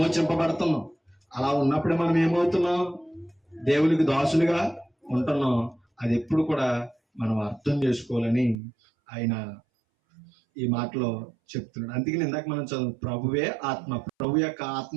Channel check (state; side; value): drops out; left; at 8.6 s